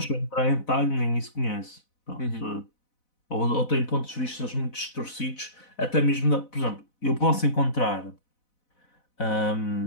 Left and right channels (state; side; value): late; right; 4.0 ms